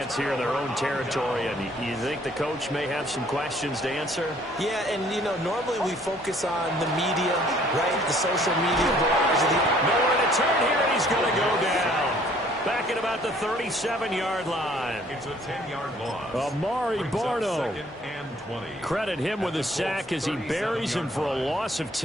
here in their own territory. And you think the coach may have some questions to answer? Yeah, and, you know, normally we focus on the media, right? The social media barrage. Nowhere to turn here, and he's going to go down. Back at about the 37-yard line. It's a 10-yard loss. Amari Barno. 2nd and 20. Credit him with a sack as he buries him for a loss of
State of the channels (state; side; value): normal; both; correlation 0.59